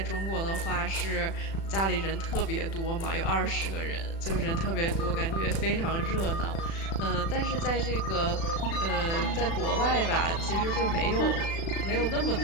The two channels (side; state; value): right; late; 36 ms